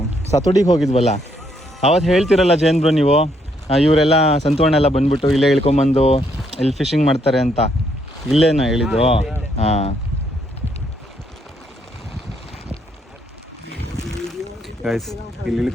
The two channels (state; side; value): normal; both; correlation 0.73